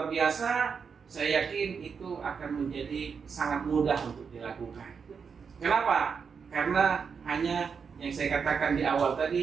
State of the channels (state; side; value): quieter; left; 6.0 dB